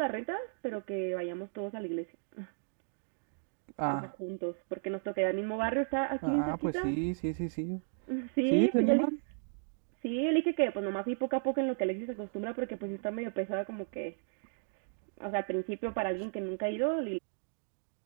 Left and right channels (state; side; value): silent; left; digital silence